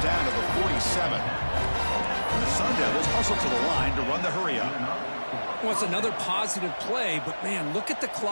to the 47. And the Sun Devils hustle to the line to run the hurry-up. Well, it's another positive play, but, man, look at the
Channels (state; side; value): inverted; both; correlation -1.00